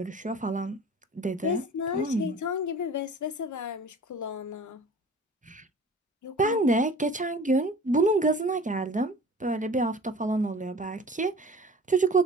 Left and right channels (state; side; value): normal; both; correlation 0.43